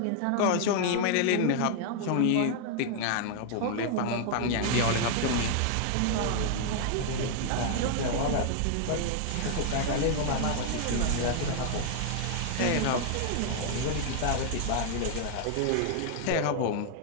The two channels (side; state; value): both; different; correlation 0.00